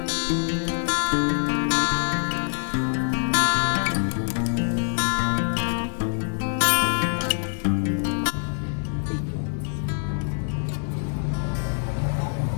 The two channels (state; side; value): silent; right; 62 dB below the other